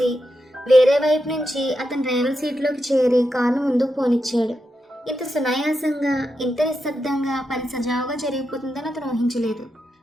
వేరే వైపు నుంచి అతను డ్రైవర్ సీట్లోకి చేరి కారును ముందుకు పోనిచ్చాడు. ఇంత సునాయాసంగా, ఇంత నిశ్శబ్దంగా పని సజావుగా జరిగిపోతుందని అతను ఊహించలేదు.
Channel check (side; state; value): both; normal; correlation 0.86